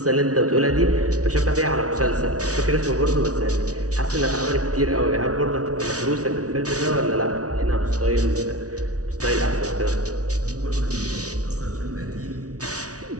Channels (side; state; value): left; late; 0.67 ms